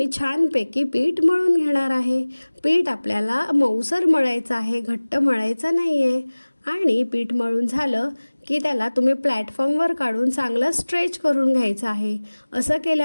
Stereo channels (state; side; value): inverted; both; correlation -1.00